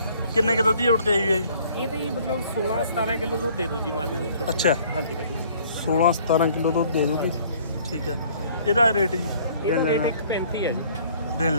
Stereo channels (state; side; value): inverted; both; correlation -0.57